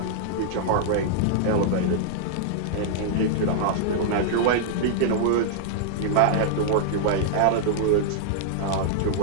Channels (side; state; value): both; different; correlation -0.01